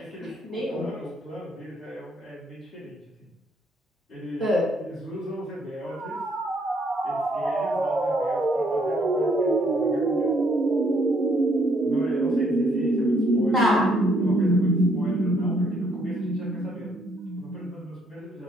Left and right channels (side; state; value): both; normal; correlation 0.69